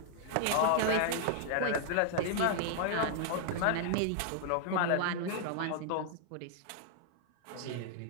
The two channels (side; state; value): both; different; correlation -0.01